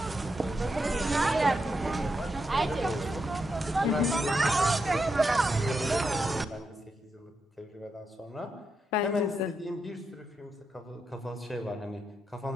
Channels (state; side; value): normal; both; correlation 0.84